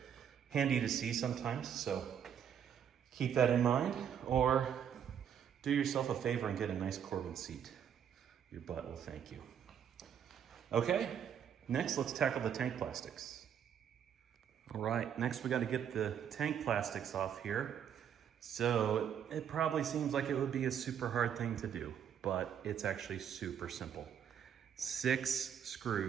handy to see sometimes. So keep that in mind, or do yourself a favor and get a nice Corbin seat. Your butt will thank you. Okay, next let's tackle the tank plastics. All right, next we got to get the tank plastics off here. So it probably seems like it would be a super hard thing to do, but it's actually super simple. 6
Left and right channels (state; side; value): quieter; left; 8.7 dB